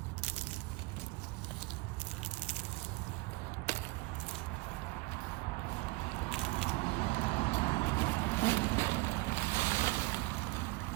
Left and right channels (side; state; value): left; quieter; 23.3 dB